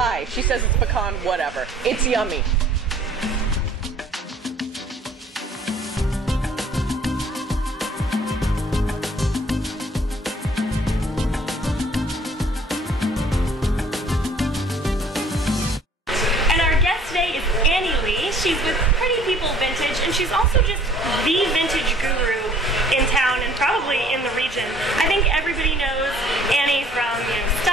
She says it's pecan, whatever. It's yummy. She's with Pretty People Vintage, and she's also just the vintage guru in town and probably in the region. I think everybody knows Annie from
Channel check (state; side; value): normal; both; correlation 0.56